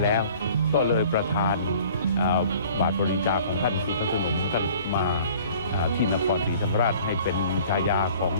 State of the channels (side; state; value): both; inverted; correlation -0.51